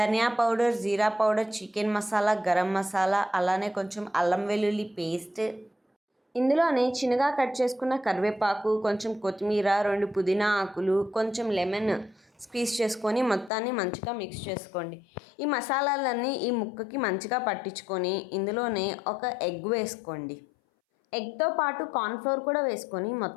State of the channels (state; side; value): drops out; right; at 13.5 s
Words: పౌడర్, జీరా పౌడర్, చికెన్ మసాలా, గరం మసాలా, అలానే కొంచెం అల్లం వెల్లుల్లి పేస్ట్, ఇందులోనే చిన్నగా కట్ చేసుకున్న కరివేపాకు, కొంచెం కొత్తిమీర, 2 పుదీనా ఆకులు, కొంచెం లెమన్ స్క్వీజ్ చేసుకొని మొత్తాన్ని మంచిగా మిక్స్ చేసుకోండి. ఈ మసాలాలన్నీ ఈ ముక్కకి మంచిగా పట్టించుకొని ఇందులోనే ఒక ఎగ్ వేసుకోండి. ఎగ్తో పాటు కార్న్‌ఫ్లోర్ కూడా వేసుకొని